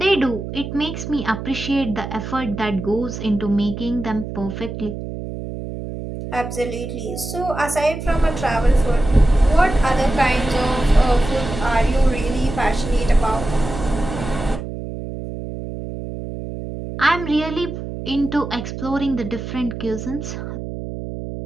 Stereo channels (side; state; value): right; noise; hum, 8 dB below the sound